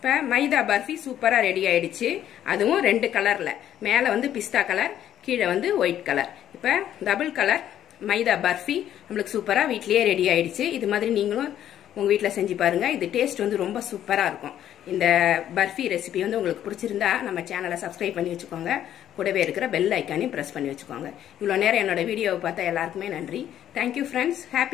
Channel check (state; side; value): quieter; right; 11.1 dB